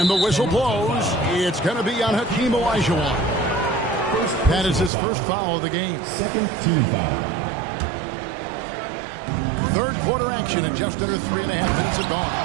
the whistle blows. It's going to be on Hakeem Olajuwon. That is his first foul of the game. second team foul. Third quarter action and just under 3.5 minutes are gone.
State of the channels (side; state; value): left; drops out; at 4.9 s